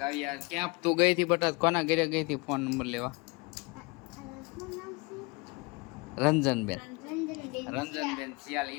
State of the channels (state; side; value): quieter; right; 27.7 dB